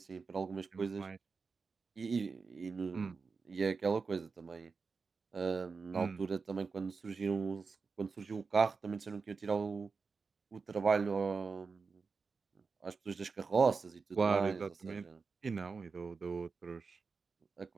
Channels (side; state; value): left; quieter; 4.8 dB